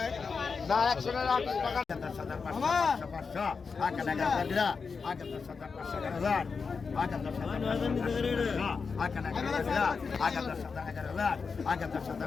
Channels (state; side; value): quieter; right; 5.1 dB